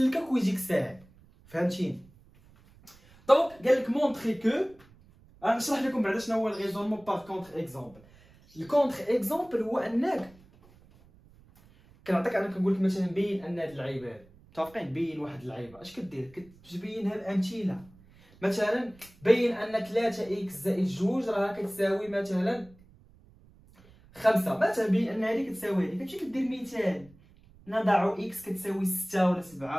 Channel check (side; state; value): right; noise; rumble, 26 dB below the sound